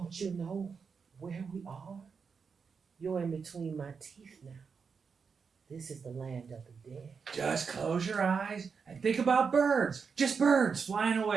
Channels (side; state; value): left; quieter; 5.7 dB